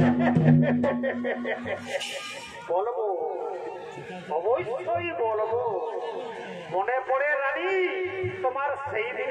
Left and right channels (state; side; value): identical; both; correlation 1.00